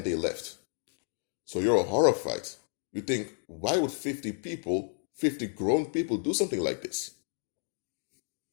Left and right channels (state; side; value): silent; right; 57 dB below the other